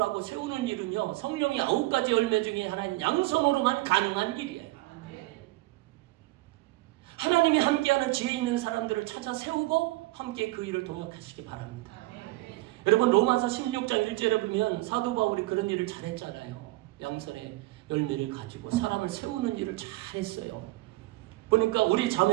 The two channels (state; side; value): quieter; left; 20.2 dB